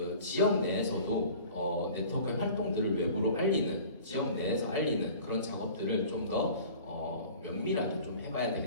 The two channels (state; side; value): inverted; both; correlation -0.44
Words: 지역 내에서도 네트워크의 활동들을 외부로 알리는, 지역 내에서 알리는 그런 작업들을 좀 더 면밀하게 좀 해봐야